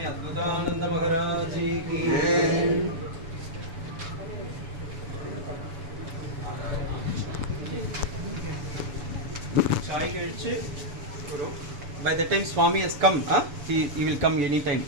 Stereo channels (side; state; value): left; late; 6.9 ms